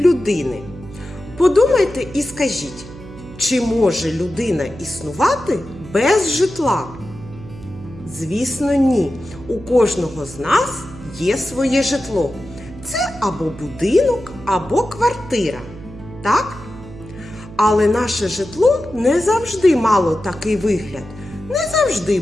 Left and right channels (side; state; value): right; noise; hum, 16 dB below the sound